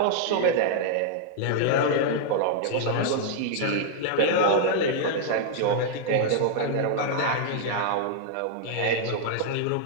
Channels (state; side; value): different; both; correlation -0.01